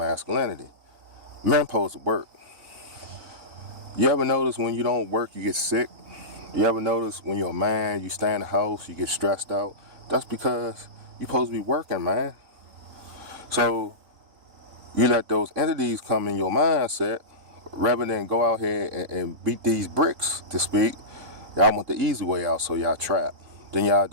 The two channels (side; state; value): left; late; 3.9 ms